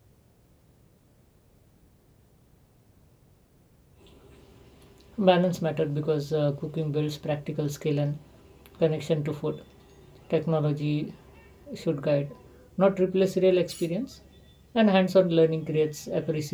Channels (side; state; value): both; identical; correlation 1.00